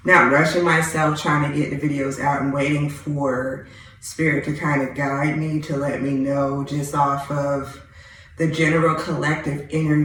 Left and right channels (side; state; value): both; identical; correlation 1.00